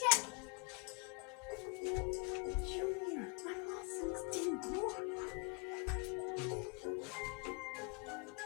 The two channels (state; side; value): quieter; right; 34.2 dB